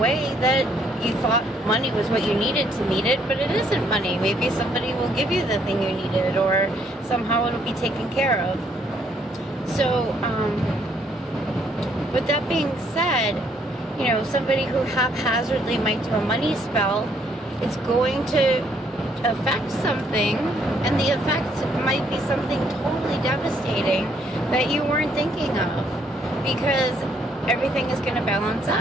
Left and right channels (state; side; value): normal; both; correlation 0.68